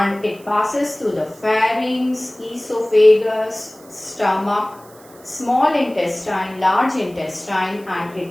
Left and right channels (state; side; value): noise; right; hiss, 25 dB below the sound